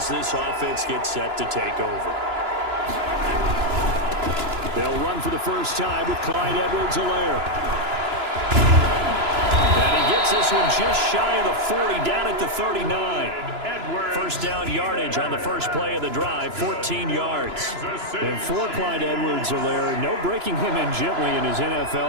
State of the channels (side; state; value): left; late; 2.9 ms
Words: this offense gets set to take over. They'll run for the first time with Clyde Edwards-Helaire. And he gets this one just shy of the 40, down at the 39. First down yardage on the first play of the drive, 14 yards. And for Clyde Edwards-Helaire, no breaking him in gently in his